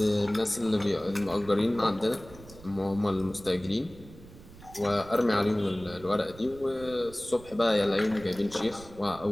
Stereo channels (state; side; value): noise; right; rumble, 19 dB below the sound